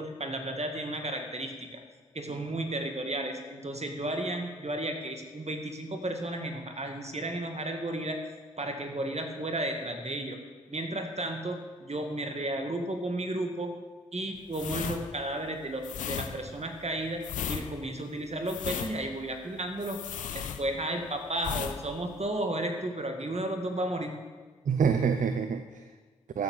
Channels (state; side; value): normal; both; correlation 0.52